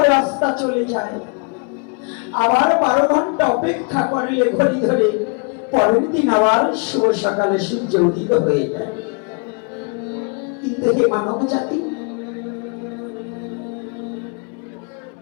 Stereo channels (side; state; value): right; quieter; 36.1 dB